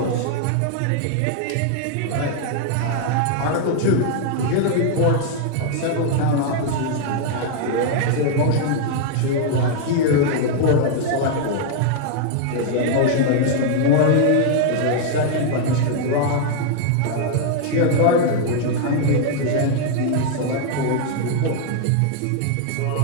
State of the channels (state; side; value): different; both; correlation 0.00